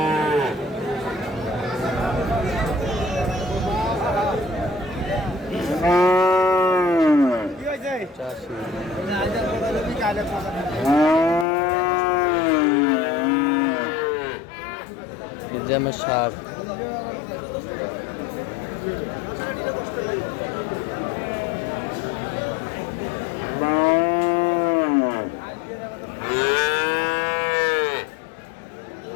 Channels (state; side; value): drops out; right; at 11.5 s